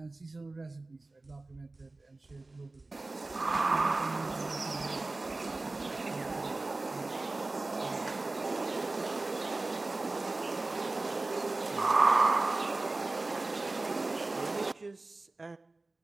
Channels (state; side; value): quieter; left; 3.2 dB